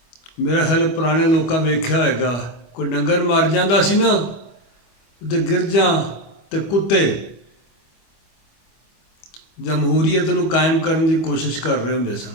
मेरा ख्याल पुराने लोगों वेख्या होएगा, कोई डंगर मर जाता सी ना ते गिरजां ते कुत्ते जमहूरीयत नूं कायम करने की कोशिश कर रहे होंदे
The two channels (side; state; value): right; late; 25 ms